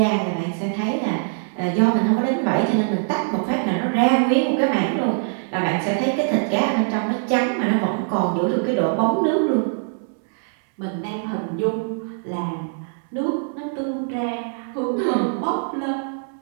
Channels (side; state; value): left; silent; 62 dB below the other